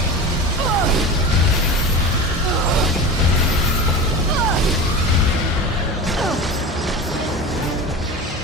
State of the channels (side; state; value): both; normal; correlation 0.29